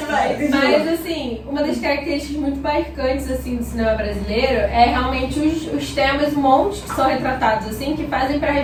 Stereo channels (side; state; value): both; identical; correlation 1.00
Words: vai. Mas, assim, uma das características muito marcantes, assim, do cinema brasileiro é realmente os temas, um monte que são retratados, assim, que fazem para